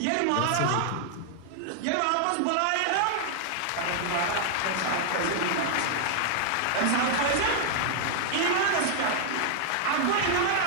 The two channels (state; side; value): different; both; correlation 0.00